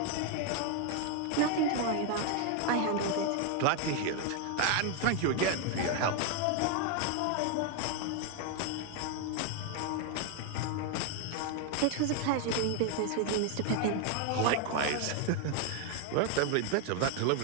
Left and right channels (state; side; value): different; both; correlation 0.01